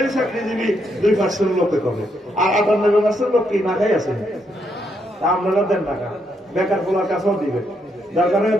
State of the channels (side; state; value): both; normal; correlation 0.77